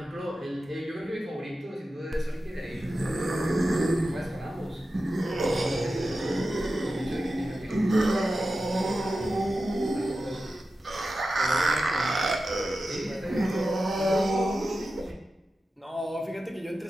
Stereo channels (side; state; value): both; normal; correlation 0.92